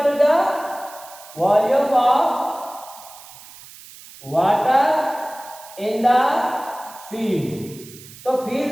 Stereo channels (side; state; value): right; noise; hiss, 19 dB below the sound